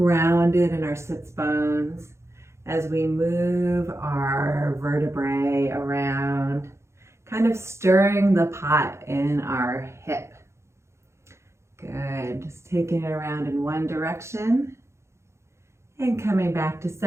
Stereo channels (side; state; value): left; late; 0.13 ms